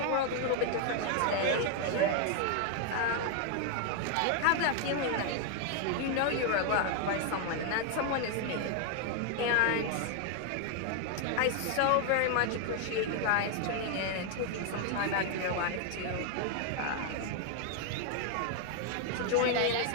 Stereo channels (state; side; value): different; both; correlation 0.00